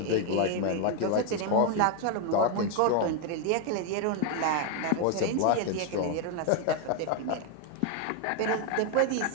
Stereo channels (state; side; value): different; both; correlation 0.01